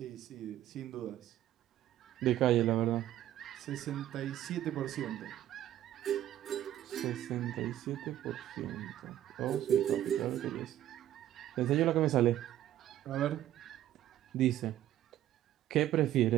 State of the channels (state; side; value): quieter; left; 12.6 dB